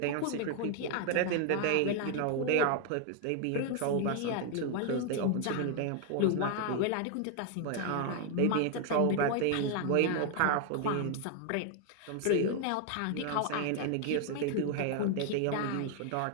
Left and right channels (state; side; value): different; both; correlation 0.00